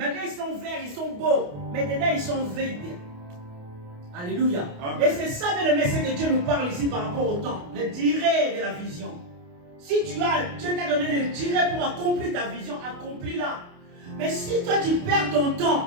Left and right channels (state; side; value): late; left; 28 ms